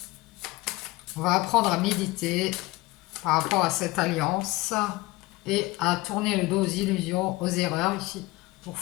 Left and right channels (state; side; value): quieter; right; 20.7 dB